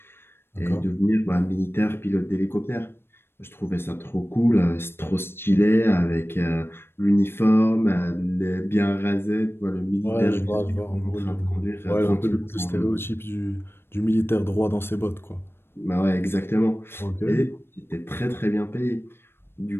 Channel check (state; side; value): late; right; 0.11 ms